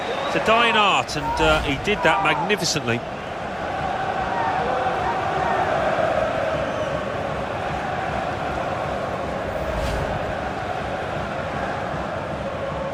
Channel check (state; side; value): identical; both; correlation 1.00